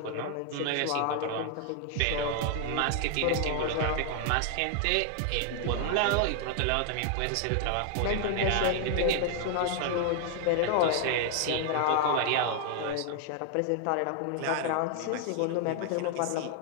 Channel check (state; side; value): different; both; correlation 0.00